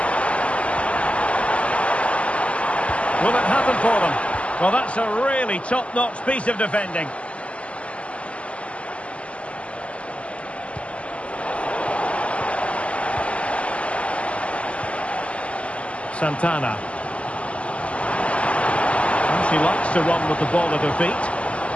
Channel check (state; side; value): late; right; 0.061 ms